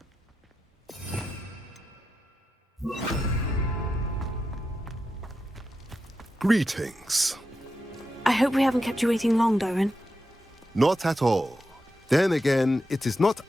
Greetings. I hope we haven't kept you waiting long, Doran. Not at all. Then again, it is not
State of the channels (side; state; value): both; normal; correlation 0.88